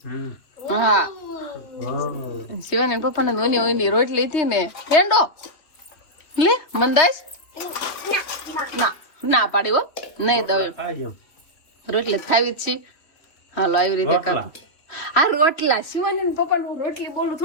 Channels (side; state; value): right; late; 3.0 ms